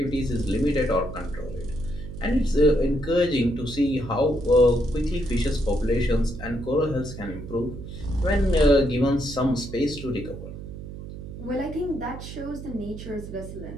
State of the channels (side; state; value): right; noise; hum, 11 dB below the sound